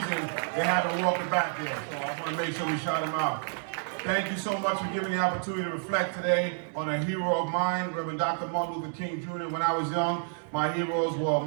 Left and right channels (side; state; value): left; silent; 58 dB below the other